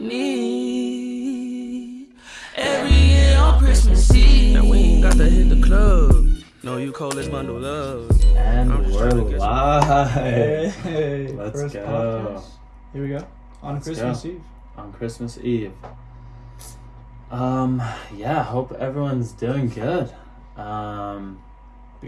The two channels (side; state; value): both; identical; correlation 1.00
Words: Every year on Christmas Eve. Now we ain't got to hit the club. No, you coldest bundle love. And I'm just we're trying to get live. Hey, Let's first go. podcast. Here we go. On Let's Christmas go. Eve. On Christmas Eve. Yeah, hope everyone's doing good.